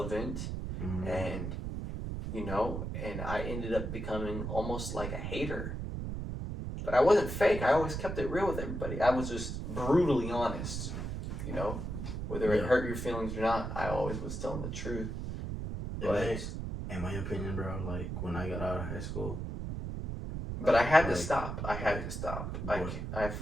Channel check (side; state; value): right; noise; rumble, 4 dB below the sound